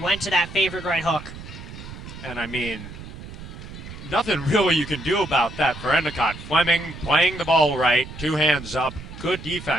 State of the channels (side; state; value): right; noise; rumble, 13 dB below the sound